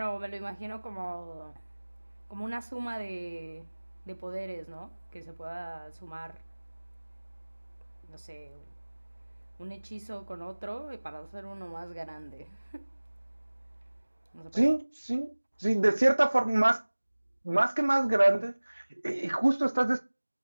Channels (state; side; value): inverted; both; correlation -1.00